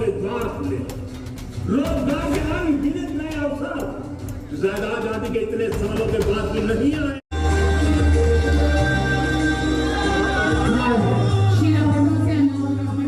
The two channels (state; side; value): identical; both; correlation 1.00